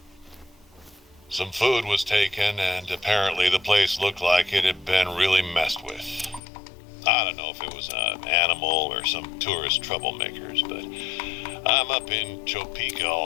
Some food was taken, and apparently the place looked like it had been really messed with. I don't know if it was an animal or some tourist troublemakers, but I'm up in Topeka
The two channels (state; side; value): drops out; right; at 6.4 s